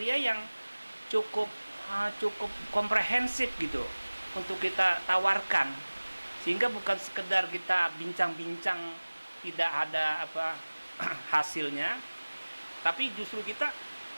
yang cukup komprehensif gitu untuk kita tawarkan, sehingga bukan sekedar kita bincang-bincang tidak ada hasilnya, tapi justru kita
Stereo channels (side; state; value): both; inverted; correlation -1.00